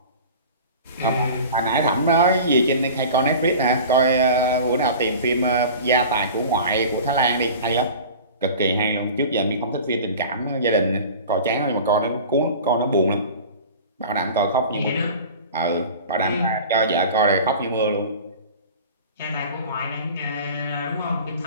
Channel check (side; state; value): both; inverted; correlation -0.38